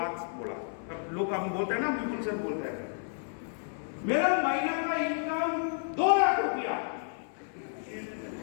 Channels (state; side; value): silent; right; 57 dB below the other